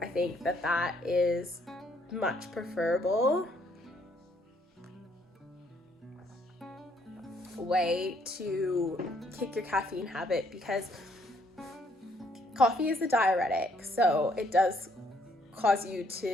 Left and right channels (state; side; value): normal; both; correlation 0.68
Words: I think that is much preferable way to kick your caffeine habit, because coffee is a diuretic, so it does cause you